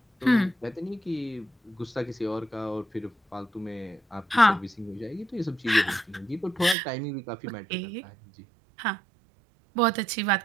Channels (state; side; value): drops out; left; at 6.8 s